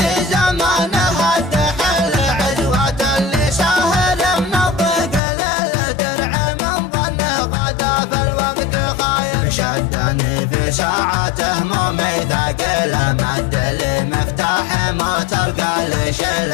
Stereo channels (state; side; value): drops out; right; at 5.2 s